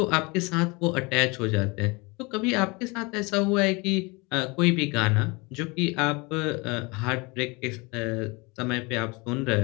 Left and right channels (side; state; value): right; quieter; 26.9 dB